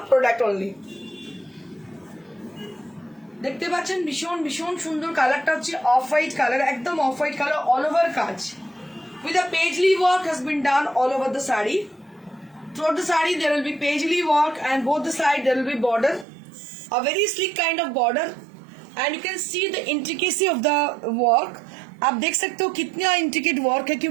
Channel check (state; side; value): drops out; left; at 16.2 s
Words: product only. দেখতে পাচ্ছেন ভীষণ ভীষণ সুন্দর কালারটা হচ্ছে off white colour, একদম off white colour, all over কাজ with a paisley work has been done all over the saree. Throughout the saree there will be paisley work, and both the side there will be border, a very sleek kind of border, and you can see the intricacy of the work. आप देख सकते हो कितना intricate work है,